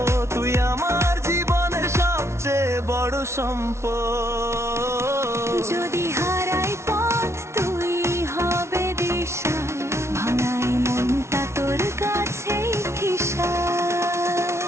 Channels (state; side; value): late; left; 0.13 ms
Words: তুই আমার জীবনের সবচেয়ে বড় সম্পদ। যদি হারাই পথ তুই হবে দিশা, ভাঙাই মনটা তোর কাছেই ঠিসা।